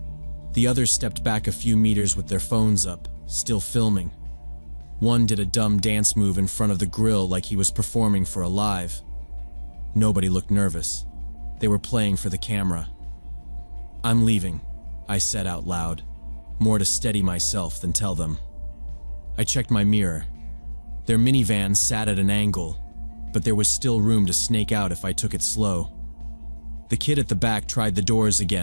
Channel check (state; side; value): inverted; both; correlation -1.00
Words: The others stepped back a few meters with their phones up, still filming. One did a dumb dance move in front of the grill like he was performing for a live. Nobody looked nervous. They were playing for the camera. "I'm leaving," I said out loud, more to steady myself than tell them. I checked my mirror. Their minivan sat at an angle, but there was still room to snake out if I took it slow. The kid at the back tried the doors